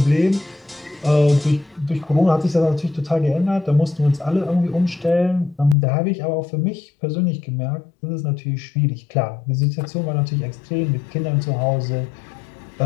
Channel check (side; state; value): right; drops out; at 5.8 s